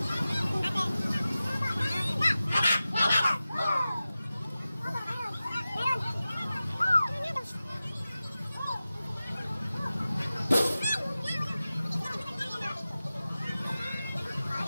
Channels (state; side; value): inverted; both; correlation -0.95